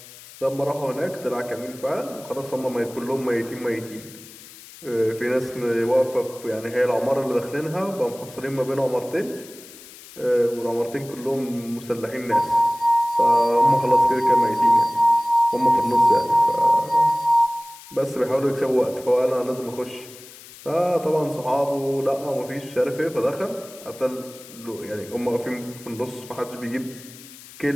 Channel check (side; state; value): left; noise; hiss, 19 dB below the sound